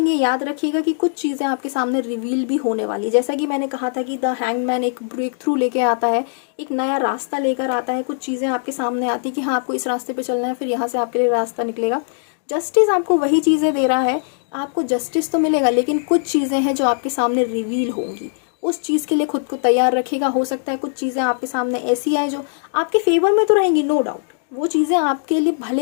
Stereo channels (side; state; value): right; silent; digital silence